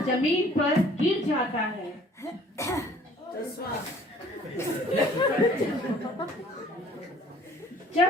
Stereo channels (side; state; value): both; normal; correlation 0.54